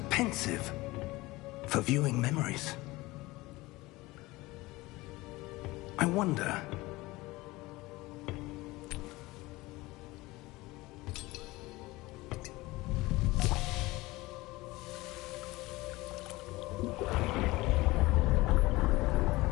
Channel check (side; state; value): right; quieter; 20.6 dB